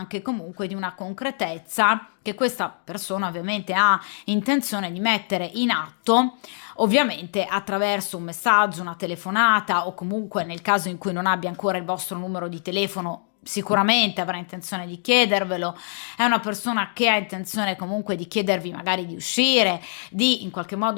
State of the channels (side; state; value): right; silent; digital silence